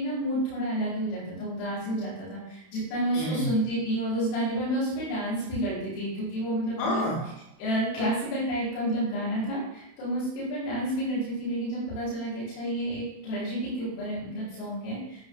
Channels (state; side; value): late; right; 31 ms